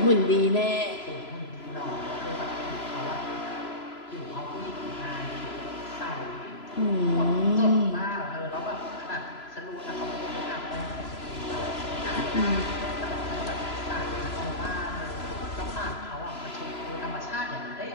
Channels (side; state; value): right; late; 3.0 ms